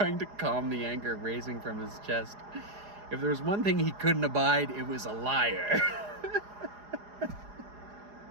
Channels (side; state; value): left; late; 4.8 ms